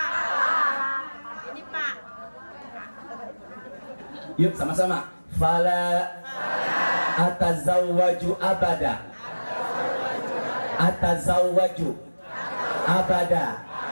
Ini Pak. Yuk sama-sama. Fala atazawwaju abada. Atazawwaju abada.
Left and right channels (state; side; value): inverted; both; correlation -1.00